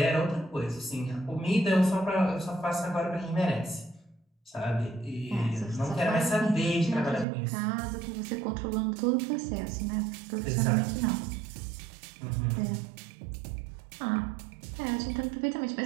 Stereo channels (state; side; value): drops out; left; at 7.2 s